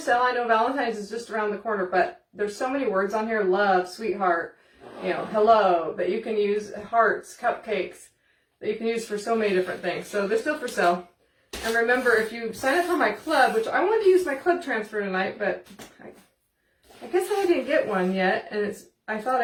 I know Valentine's is just around the corner, but there's so many words on here. Love, sweetheart, you know, hello, that you can use, hearts, cupcakes, that you can use for so many different things. So they're still for sale. And remember, if you sign up for my club, which I wanted to use my club transfer tonight, but I guess I didn't get one yet. And I thought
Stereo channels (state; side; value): identical; both; correlation 1.00